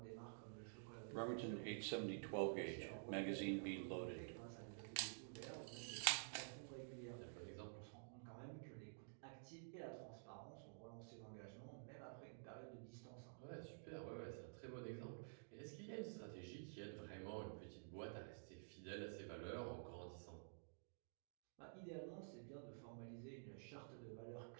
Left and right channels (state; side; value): silent; left; digital silence